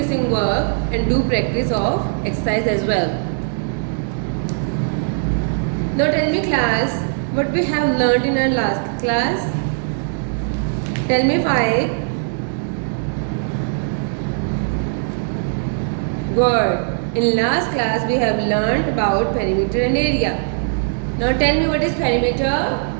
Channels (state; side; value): silent; left; digital silence